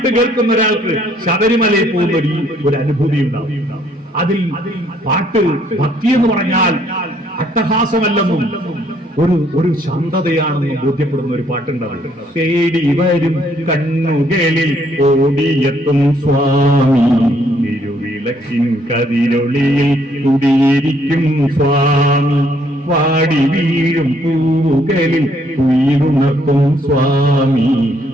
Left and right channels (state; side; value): normal; both; correlation 0.67